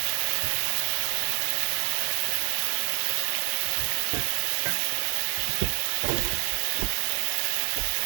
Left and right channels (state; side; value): silent; left; 60 dB below the other